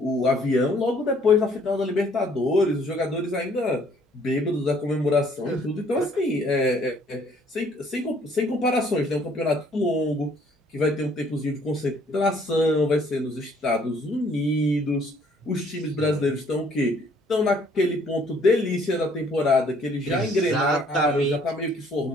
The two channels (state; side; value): normal; both; correlation 0.62